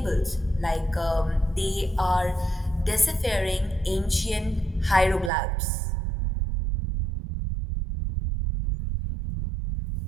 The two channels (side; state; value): left; drops out; at 5.3 s